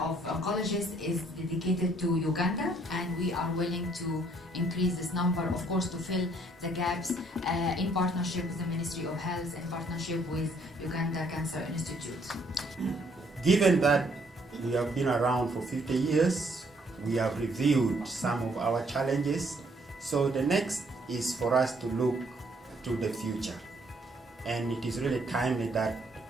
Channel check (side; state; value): both; normal; correlation 0.66